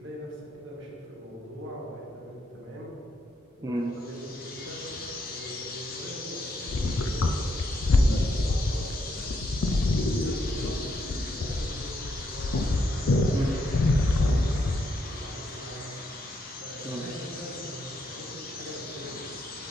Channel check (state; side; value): normal; both; correlation 0.78